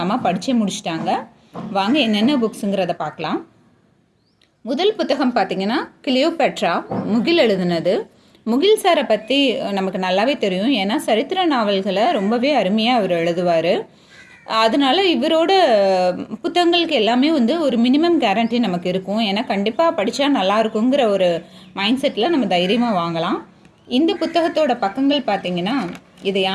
அம்மா படித்தே முடிச்சிட்டாங்க. வாங்க என்னென்ன புக்ஸுங்கிறத பார்க்கலாம். முதல் புத்தகம் பார்த்திங்கன்னா கிளியோபேட்ரா, முகில் எழுதுனது. முகில் சாரை பற்றி நமக்கு நல்லாவே தெரியும். ஏன்னா சரித்திர நாவல்களை ரொம்பவே அருமையாக அவர் எழுதுவார். அதனால் இவரோட புத்தகங்களுக்கு எல்லாமே ஒரு மினிமம் கேரண்டி நமக்கு இருக்கும். ஏன்னா கண்டிப்பாக படித்தா நல்லா இருக்குங்கிற ஒரு மைண்ட் செட்டில் நம்ம தைரியமாக வாங்கலாம். இந்த புத்தகத்தோட பக்கங்கள் பார்த்திங்கன்னா, இதை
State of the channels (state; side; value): identical; both; correlation 1.00